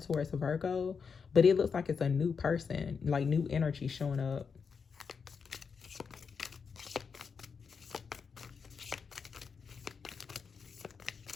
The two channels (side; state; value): right; quieter; 5.8 dB